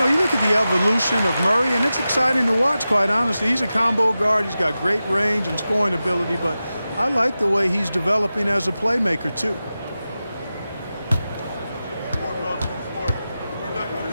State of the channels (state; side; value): inverted; both; correlation -0.93